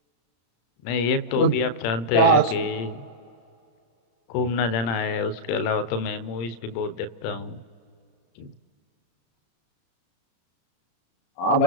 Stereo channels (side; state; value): right; late; 34 ms